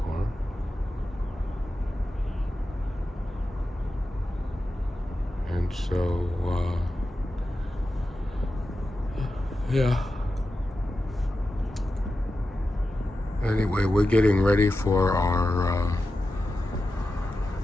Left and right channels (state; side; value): normal; both; correlation 0.92